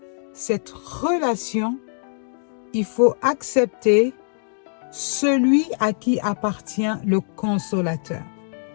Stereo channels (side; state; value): right; silent; digital silence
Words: cette relation, il faut accepter celui à qui appartient le consolateur.